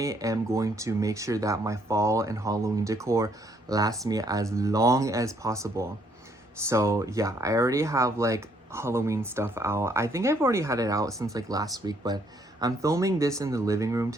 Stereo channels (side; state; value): both; normal; correlation 0.68